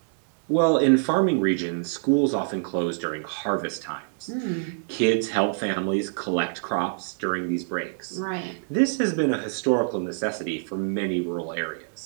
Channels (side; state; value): left; silent; digital silence